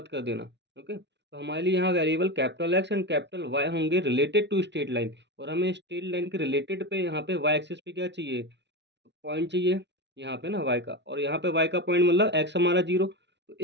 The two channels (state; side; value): late; left; 0.51 ms